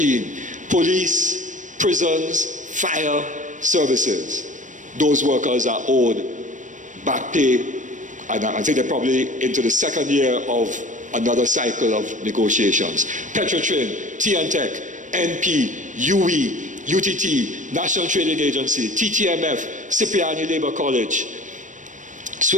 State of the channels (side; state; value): left; late; 0.37 ms